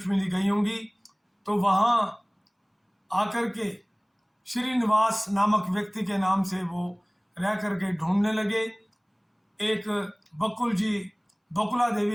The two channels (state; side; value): identical; both; correlation 1.00